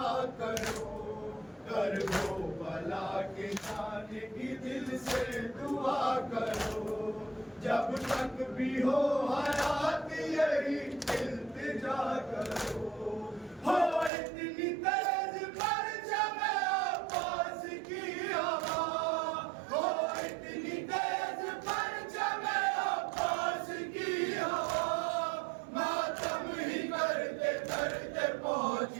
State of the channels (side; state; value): left; drops out; at 14.1 s